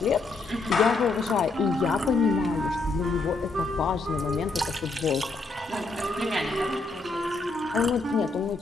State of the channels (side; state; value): right; quieter; 3.6 dB